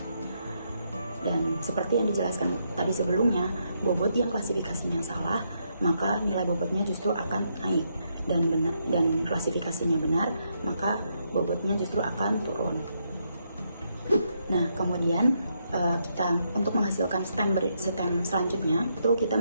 Dan seperti yang dijelaskan tadi sebelumnya, bobot yang klasifikasinya salah, maka nilai bobotnya justru akan naik, dan klasifikasinya benar, maka bobotnya justru akan turun. Nah, kemudian kita untuk menghasilkan stem selanjutnya itu kita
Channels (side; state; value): both; inverted; correlation -0.78